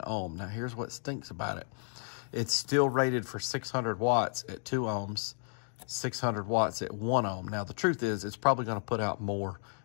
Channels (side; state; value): right; silent; 56 dB below the other